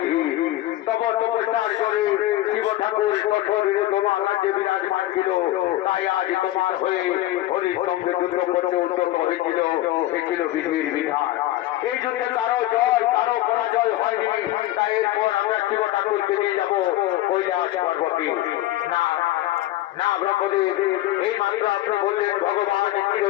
তব তপস্যার করে শিব ঠাকুর কঠোরে তোমার রাজ্যে বিরাজমান ছিল। তাই আজ তোমার হয়ে হরির সঙ্গে যুদ্ধ করতে উদ্যত হয়েছিল। এ ছিল বিধির বিধান। এই যুদ্ধে কারো জয় কারো পরাজয় হয়নি। তাই এরপর আমরা শিব ঠাকুরকে নিয়ে যাবো কৈলাস পর্বতে। না না ব্রহ্মদেব, এই মাত্র আপনি বললেন ভগবান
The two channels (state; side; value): quieter; right; 15.4 dB